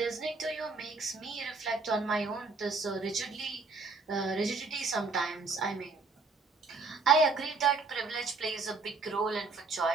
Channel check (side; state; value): left; quieter; 4.0 dB